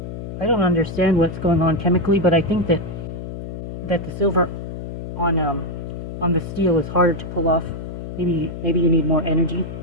I don't understand what's going on chemically, but I think that the silver on the steel is harder to pull off. Maybe you need more energy.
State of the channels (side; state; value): left; noise; hum, 8 dB below the sound